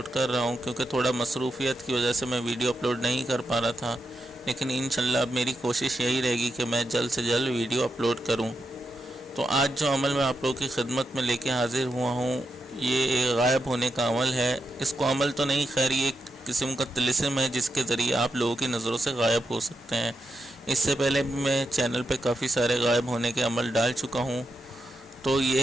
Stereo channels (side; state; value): both; normal; correlation 0.85